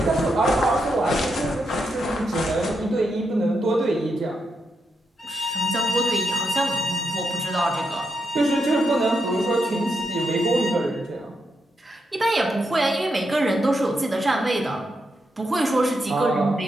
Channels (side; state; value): both; normal; correlation 0.83